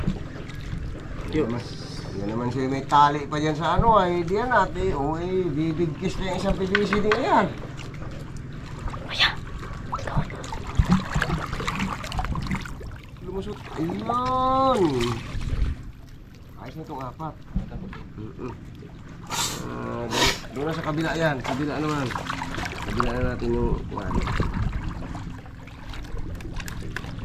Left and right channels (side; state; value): both; identical; correlation 1.00